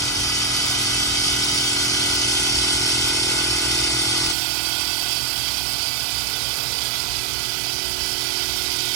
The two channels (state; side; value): drops out; left; at 4.4 s